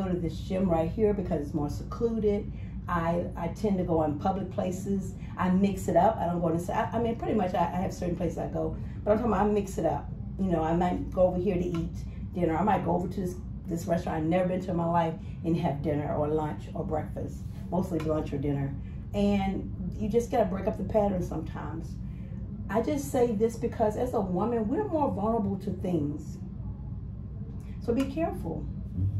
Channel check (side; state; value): both; identical; correlation 1.00